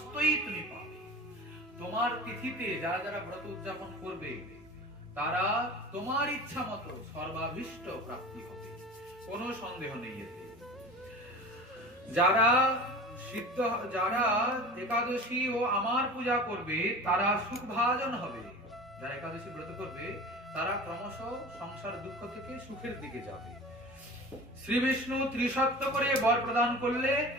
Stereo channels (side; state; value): both; normal; correlation 0.36